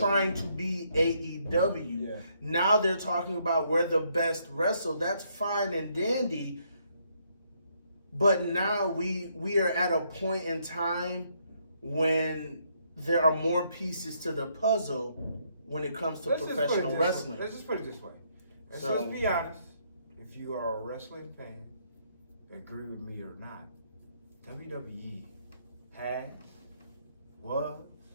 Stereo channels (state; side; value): inverted; both; correlation -0.72